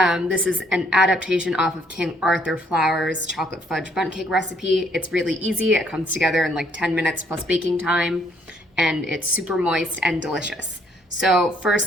This is an adaptation off of King Arthur Flour's chocolate fudge bundt cake recipe. It's really easy. It comes together in like 10 minutes plus baking time, and it's super moist and delicious. So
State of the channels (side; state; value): both; normal; correlation 0.66